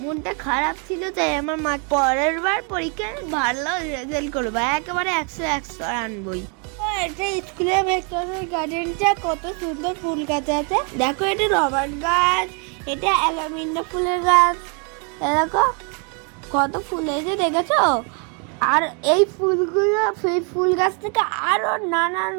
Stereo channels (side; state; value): left; quieter; 37.4 dB